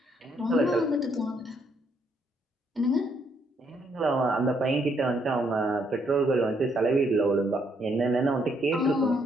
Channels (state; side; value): normal; both; correlation 0.72